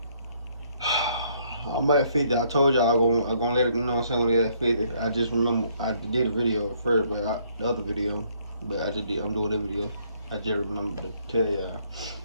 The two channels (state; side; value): inverted; both; correlation -0.67